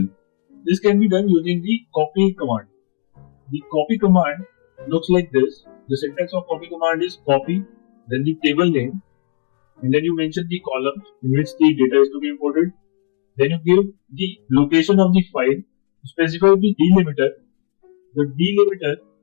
This can be done using the copy command. The copy command looks like this. The syntax of copy command is copy, then the table name, and then you mention the columns in which the data is to be imported. Then you give the location of the file, specify the delimiter. The delimiter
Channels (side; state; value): right; silent; digital silence